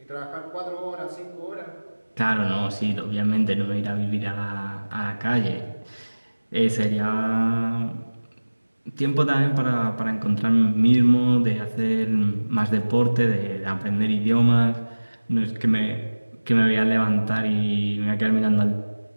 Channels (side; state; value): both; inverted; correlation -1.00